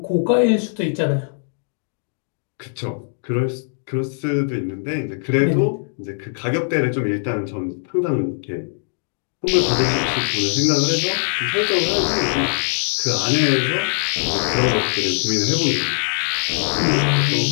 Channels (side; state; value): right; silent; digital silence